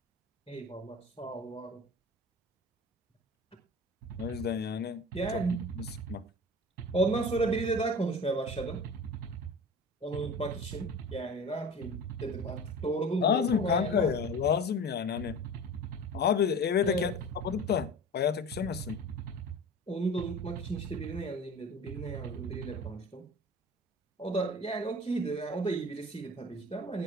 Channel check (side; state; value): both; normal; correlation 0.36